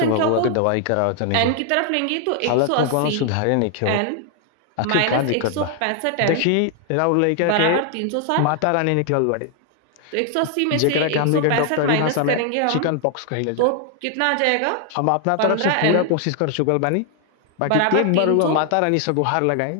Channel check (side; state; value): both; different; correlation 0.00